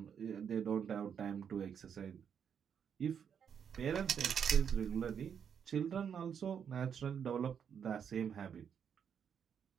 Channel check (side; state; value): left; quieter; 7.7 dB